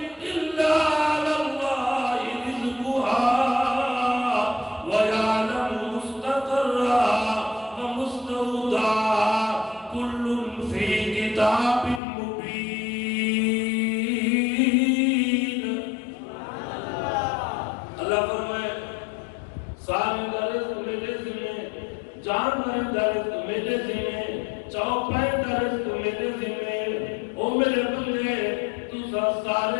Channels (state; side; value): drops out; right; at 12.0 s